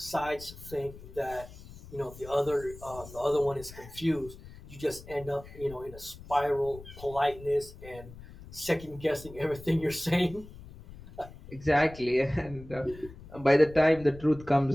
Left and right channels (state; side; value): noise; left; rumble, 17 dB below the sound